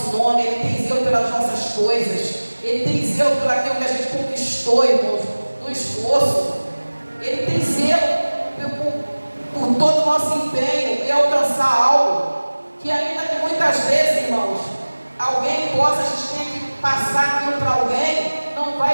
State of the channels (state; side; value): inverted; both; correlation -1.00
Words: nome, Ele tem zelo pelas nossas coisas, Ele tem zelo por aquilo que a gente conquistou, irmãos, no esforço. Ele tem zelo por todo o nosso empenho em alcançar algo que ainda que muitas vezes, irmãos, alguém possa, a gente tem que passar aquilo para alguém, não